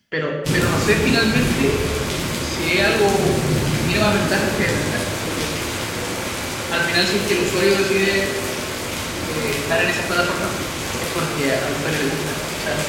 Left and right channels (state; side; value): identical; both; correlation 1.00